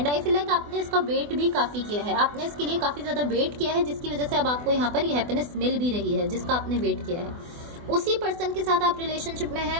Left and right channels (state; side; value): late; left; 24 ms